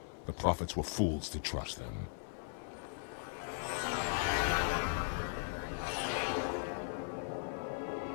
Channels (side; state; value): right; silent; 52 dB below the other